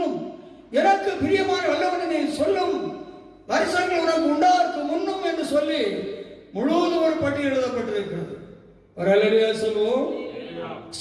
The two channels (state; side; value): identical; both; correlation 1.00